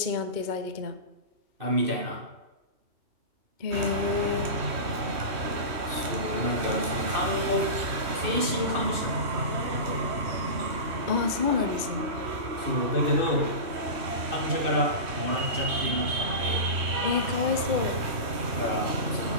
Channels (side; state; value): left; late; 3.1 ms